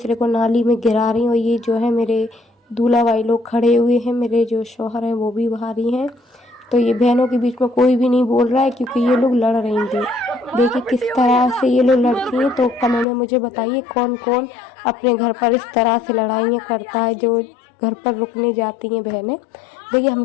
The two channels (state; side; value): drops out; right; at 13.1 s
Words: को नाली में गिरा रही हैं। और ये जो है मेरे दूल्हा भाई लोग खड़े हुए हैं, मेरे जो शौहर हैं वो भी बाहर ही हैं। तो ये बहनों के बीच में कोई भी नहीं बोल रहा है, क्योंकि ये लोग लड़ रही थी। देखिए किस तरह से ये लोग लड़ती हैं। तो कमेंट में मुझे बताइए कौन कौन अपने घर पर इस तरह से लड़ाइयाँ करता है, जो घर पर रुकने जाती हैं बहनें। देखिए हम